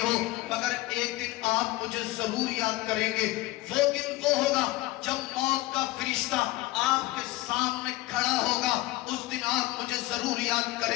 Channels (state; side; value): quieter; right; 18.5 dB